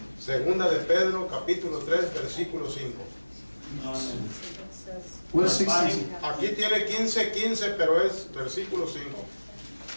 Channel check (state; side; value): inverted; both; correlation -1.00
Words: Segunda de Pedro, capítulo 3, versículo 5. What is 16? Aquí tiene 15, pero es versículo 5.